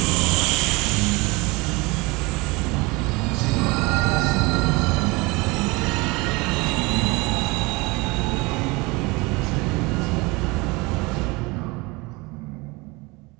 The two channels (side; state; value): left; quieter; 24.8 dB